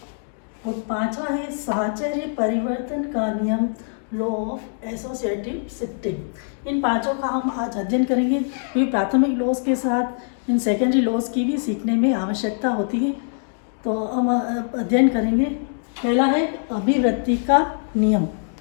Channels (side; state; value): right; silent; digital silence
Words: और पांचवा है साहचर्य परिवर्तन का नियम, लॉ ऑफ एसोसिएटिव शिफ्टिंग। इन पांचों का हम आज अध्ययन करेंगे, क्योंकि प्राथमिक लॉज के साथ इन सेकेंडरी लॉज की भी सीखने में आवश्यकता होती है। तो हम अध्ययन करेंगे। पहला है अभिव्यक्ति का नियम।